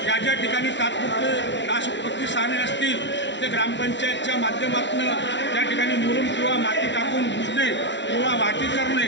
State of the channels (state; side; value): late; right; 0.52 ms